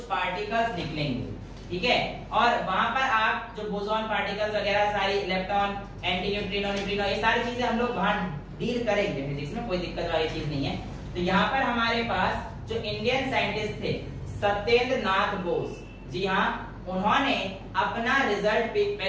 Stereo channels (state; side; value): identical; both; correlation 1.00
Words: पार्टिकल्स निकलेंगे। ठीक है, और वहां पर आप जो बोसॉन पार्टिकल्स वगैरह सारी, इलेक्ट्रॉन, एंटी न्यूट्रिनो, न्यूट्रिनो, ये सारी चीजें हम लोग वहां डील करेंगे फिजिक्स में, कोई दिक्कत वाली चीज नहीं है। तो यहाँ पर हमारे पास जो इंडियन साइंटिस्ट थे सत्येंद्र नाथ बोस, जी हाँ, उन्होंने अपना रिजल्ट